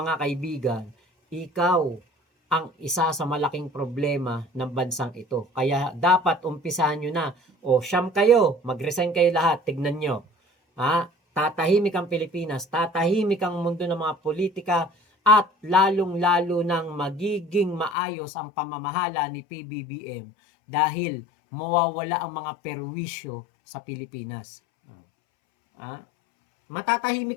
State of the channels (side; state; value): right; drops out; at 17.9 s